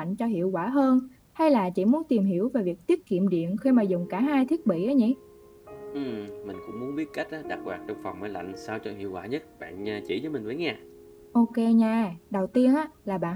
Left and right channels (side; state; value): both; identical; correlation 1.00